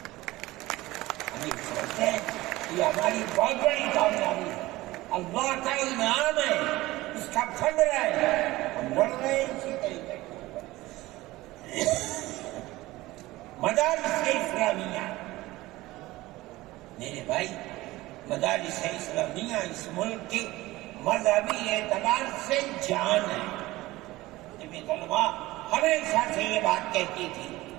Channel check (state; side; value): quieter; left; 18.6 dB